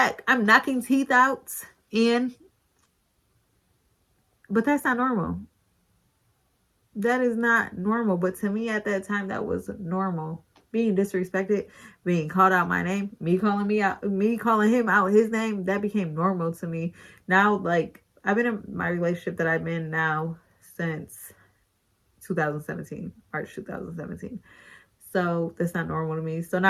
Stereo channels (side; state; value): both; identical; correlation 1.00